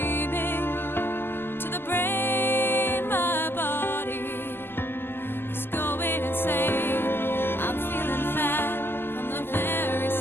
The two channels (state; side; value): late; right; 0.11 ms